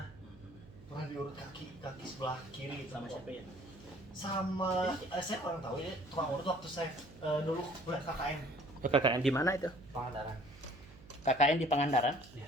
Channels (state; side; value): noise; right; hum, 21 dB below the sound